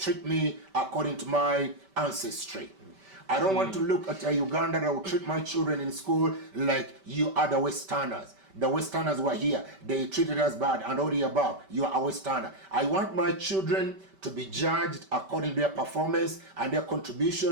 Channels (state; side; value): late; left; 5.1 ms